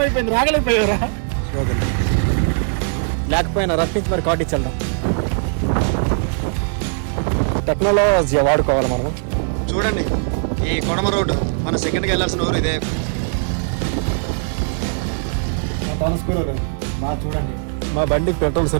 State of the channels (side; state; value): left; silent; digital silence